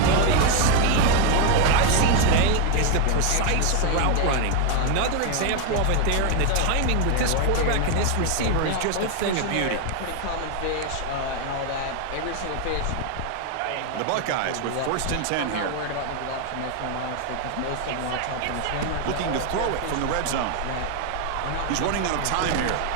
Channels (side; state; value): both; different; correlation 0.01